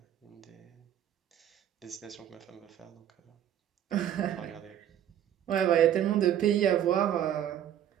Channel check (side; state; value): left; quieter; 10.6 dB